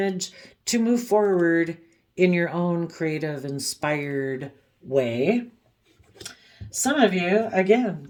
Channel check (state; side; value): identical; both; correlation 1.00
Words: to move forward in your own creative, inspired way. Some of you, again,